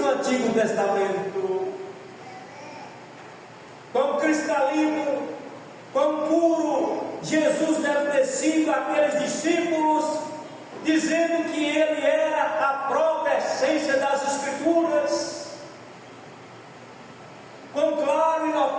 no Antigo Testamento. Quão cristalino, quão puro Jesus deve ter sido aqueles discípulos, dizendo que Ele era a própria essência das Escrituras. Quão claro e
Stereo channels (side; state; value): both; identical; correlation 1.00